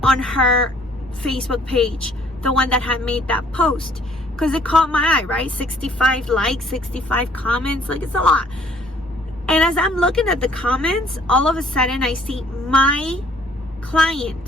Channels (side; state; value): both; normal; correlation 0.60